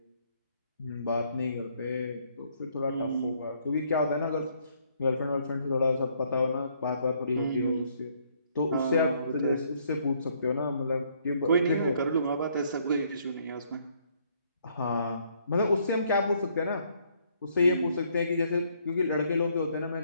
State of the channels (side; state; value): both; inverted; correlation -0.68